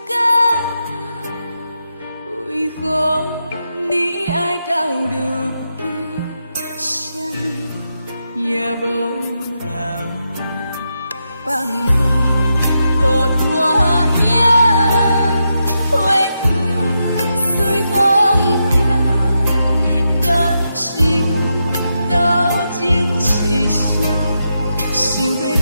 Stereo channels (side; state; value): both; inverted; correlation -0.85